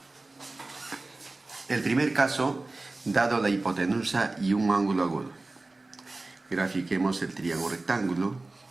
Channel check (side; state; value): left; quieter; 3.2 dB